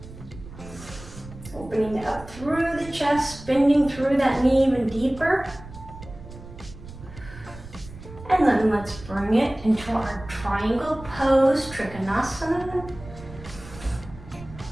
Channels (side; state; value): right; noise; rumble, 16 dB below the sound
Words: Opening up through the chest, bending through that knee even deeper. And then let's bring it into our triangle pose, Trikonasana.